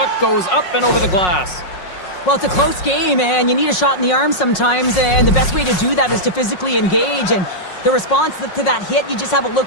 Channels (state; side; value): late; right; 5.5 ms